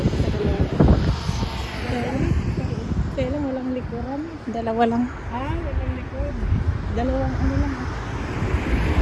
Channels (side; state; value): both; identical; correlation 1.00